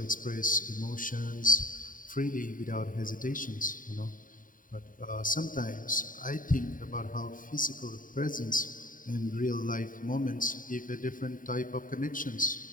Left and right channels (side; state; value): right; late; 0.39 ms